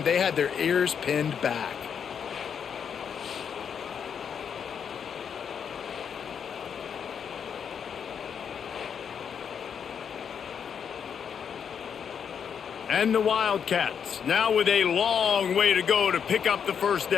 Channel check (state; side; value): quieter; right; 7.4 dB